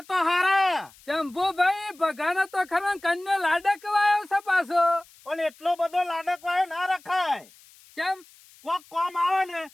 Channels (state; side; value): noise; left; hiss, 26 dB below the sound